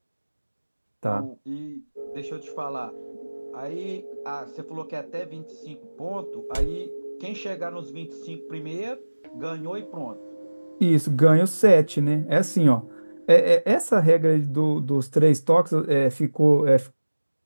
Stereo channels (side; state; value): both; inverted; correlation -1.00